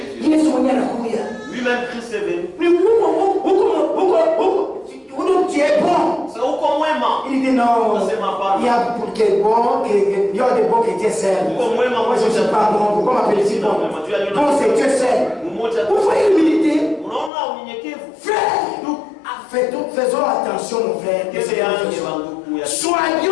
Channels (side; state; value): right; drops out; at 17.3 s